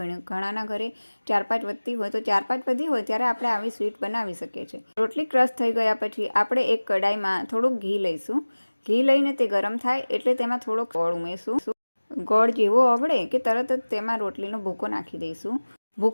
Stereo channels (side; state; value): both; inverted; correlation -1.00